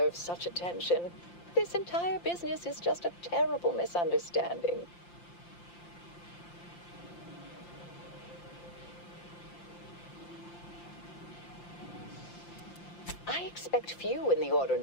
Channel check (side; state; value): right; late; 5.8 ms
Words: such attention. This entire business is just a terrible misunderstanding. I expect few in the Order